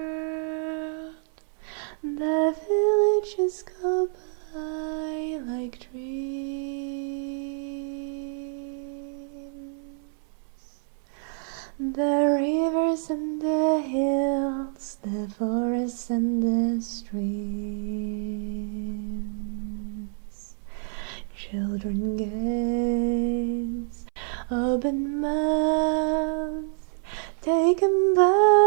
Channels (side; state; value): left; silent; 60 dB below the other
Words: the villages go by like dreams. The rivers and the hills, the forests and the streams. Children gaze, open mouths, taken